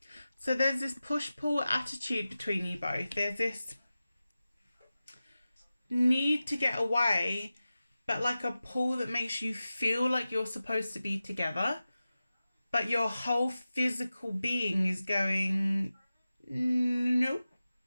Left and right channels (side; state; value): both; inverted; correlation -0.95